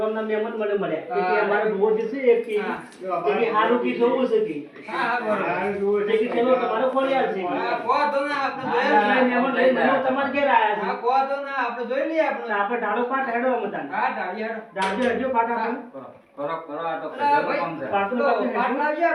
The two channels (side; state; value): both; identical; correlation 1.00